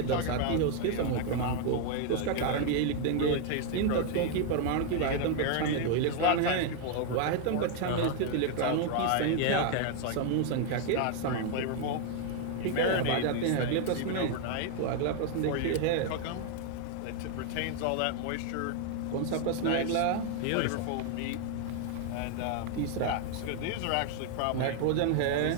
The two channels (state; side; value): different; both; correlation 0.00